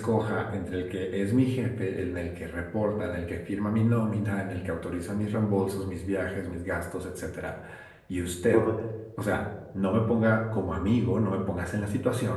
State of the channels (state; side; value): identical; both; correlation 1.00